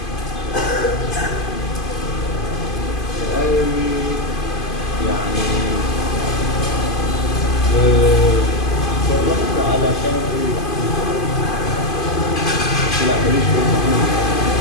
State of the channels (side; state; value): right; late; 2.5 ms